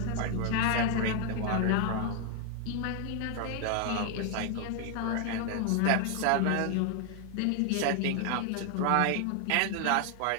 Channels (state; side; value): different; both; correlation 0.00